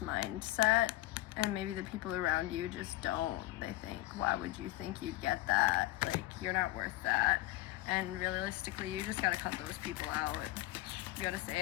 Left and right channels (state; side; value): quieter; right; 17.1 dB